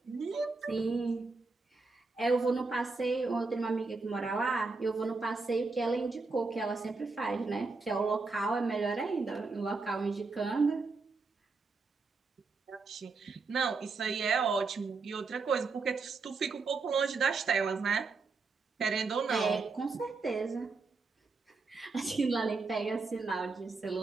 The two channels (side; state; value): left; quieter; 4.1 dB